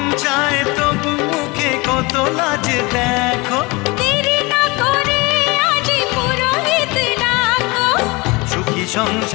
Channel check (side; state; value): right; quieter; 25.1 dB